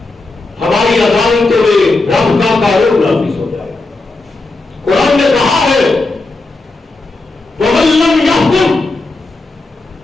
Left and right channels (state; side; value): quieter; right; 3.2 dB